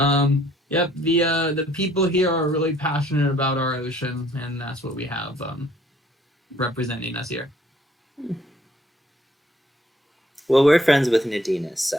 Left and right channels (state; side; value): normal; both; correlation 0.62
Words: Yep, the people here are really passionate about our ocean, and that's what we have representing us here. Well, we're friends with Nadina,